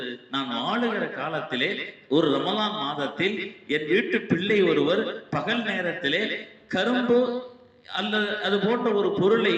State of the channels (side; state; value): both; identical; correlation 1.00